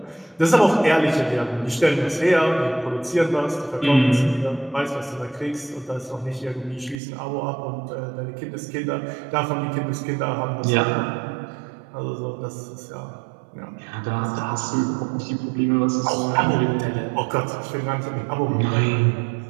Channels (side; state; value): left; drops out; at 7.0 s